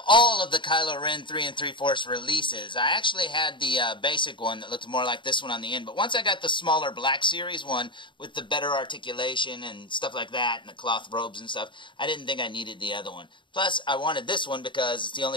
all of the Kylo Ren 3 3/4 releases. I actually had the basic one that looked more like this one on the end, but once I got the smaller Black Series one with the better articulation and stuff like that, and the cloth robes and stuff, I didn't think I needed the other one. Plus, I wanted this one because it's the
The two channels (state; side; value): late; right; 0.23 ms